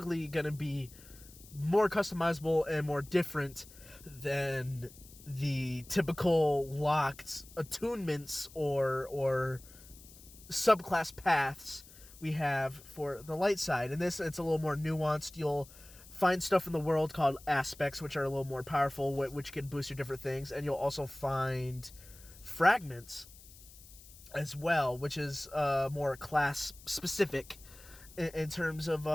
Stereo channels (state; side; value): noise; left; hiss, 21 dB below the sound